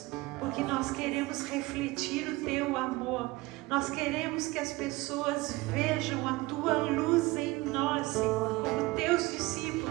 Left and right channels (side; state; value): left; quieter; 21.2 dB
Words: porque nós queremos refletir o Teu amor. Nós queremos que as pessoas vejam a Tua luz em nós, Senhor, como Teus